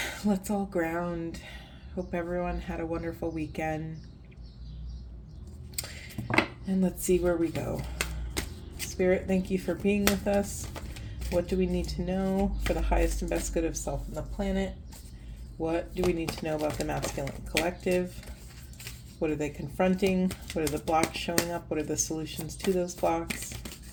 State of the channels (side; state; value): both; identical; correlation 1.00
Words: let's all ground. Hope everyone had a wonderful weekend. And let's see where we go. Spirit, thank you for being with us. What do we need to know for the highest and best good of self and the planet? What do we need to know about the masculine collective? What are they confronting? What are the blocks showing up? What are the solutions to those blocks?